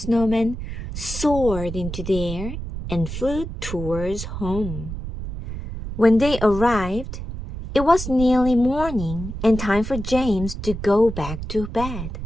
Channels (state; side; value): noise; right; rumble, 7 dB below the sound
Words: soared into the air and flew towards home. When they arrived, it was nearly morning and time for James to go back to bed.